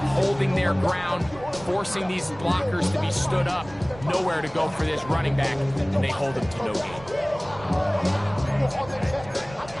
holding their ground, forcing these blockers to be stood up. Nowhere to go for this running back, and they hold him to no gain.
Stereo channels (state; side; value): noise; right; rumble, 18 dB below the sound